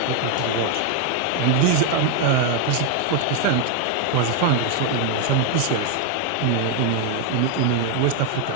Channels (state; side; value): different; both; correlation 0.00